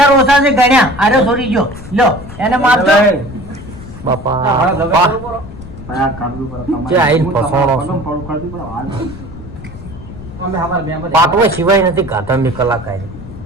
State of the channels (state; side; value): noise; left; rumble, 14 dB below the sound